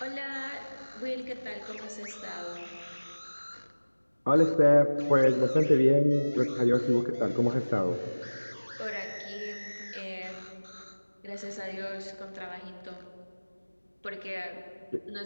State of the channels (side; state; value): both; inverted; correlation -1.00